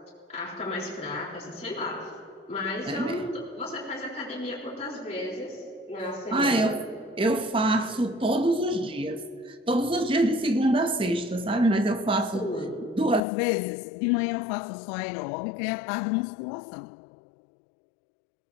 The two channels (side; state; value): right; drops out; at 13.2 s